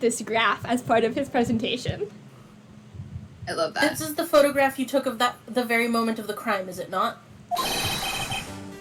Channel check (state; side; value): identical; both; correlation 1.00